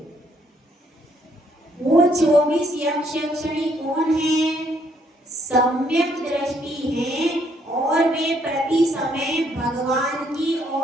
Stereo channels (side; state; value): both; normal; correlation 0.69